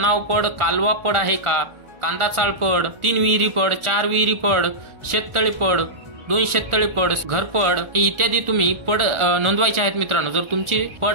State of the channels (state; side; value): late; left; 1.4 ms